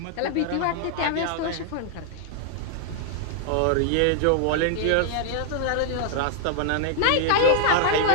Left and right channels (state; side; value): different; both; correlation -0.01